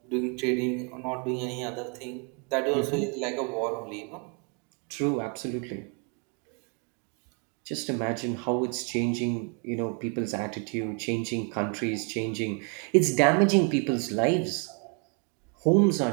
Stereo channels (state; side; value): quieter; left; 37.9 dB